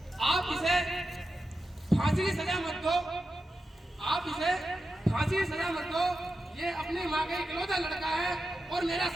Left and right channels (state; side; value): normal; both; correlation 0.90